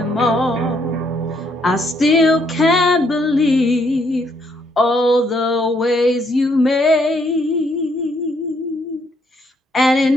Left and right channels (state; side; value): normal; both; correlation 0.71